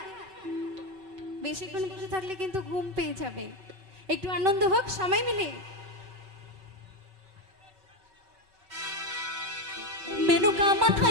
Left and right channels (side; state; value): left; late; 5.2 ms